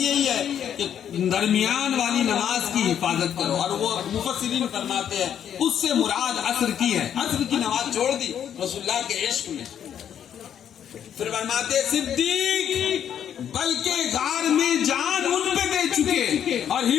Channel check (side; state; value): right; quieter; 9.2 dB